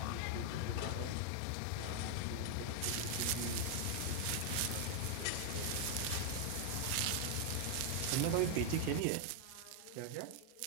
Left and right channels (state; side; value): different; both; correlation 0.00